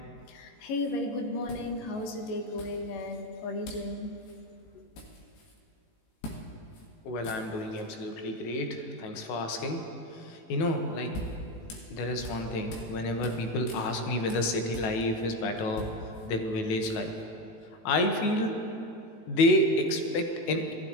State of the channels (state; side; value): late; right; 18 ms